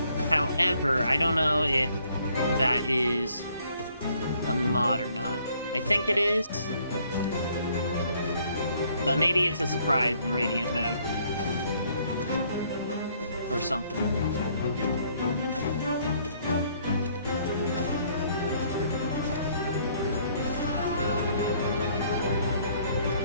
However, I don't know if that is a mod or not. I think it is. But maybe it's a surprise in Radiant mode. Or something.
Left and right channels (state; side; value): inverted; both; correlation -0.65